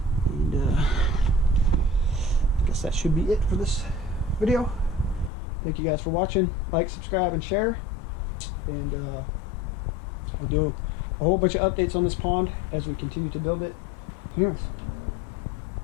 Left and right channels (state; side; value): drops out; right; at 5.3 s